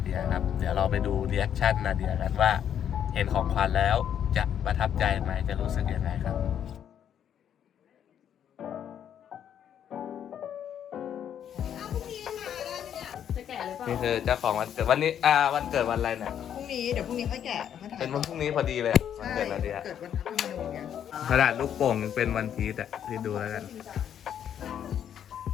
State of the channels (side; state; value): right; quieter; 9.3 dB